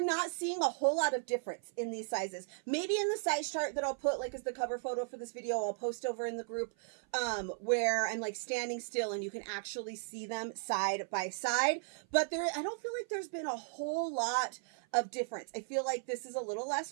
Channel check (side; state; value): left; silent; 54 dB below the other